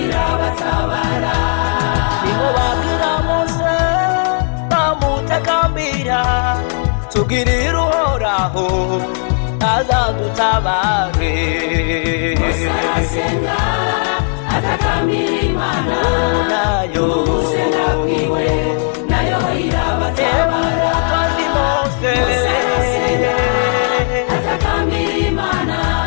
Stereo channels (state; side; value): silent; right; 58 dB below the other